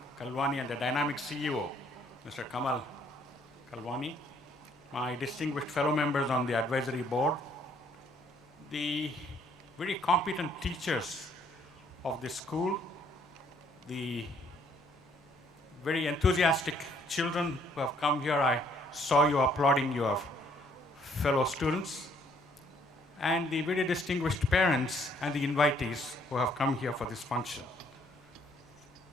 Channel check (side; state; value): both; normal; correlation 0.65